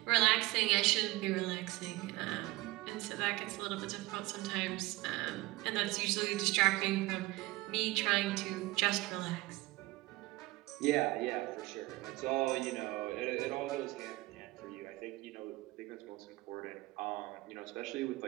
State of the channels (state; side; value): quieter; left; 20.4 dB